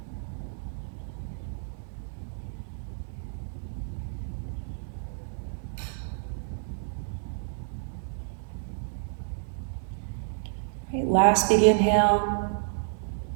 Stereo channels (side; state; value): left; silent; digital silence